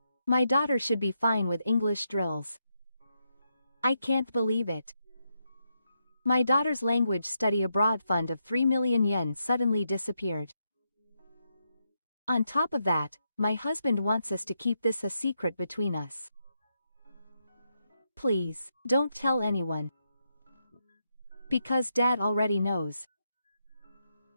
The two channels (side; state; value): both; inverted; correlation -0.82